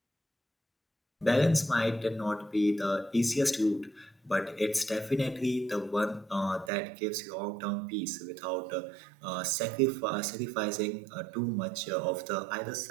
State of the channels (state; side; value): drops out; left; at 6.7 s